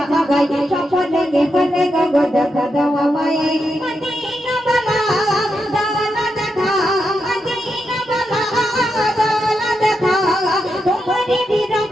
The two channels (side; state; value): both; normal; correlation 0.85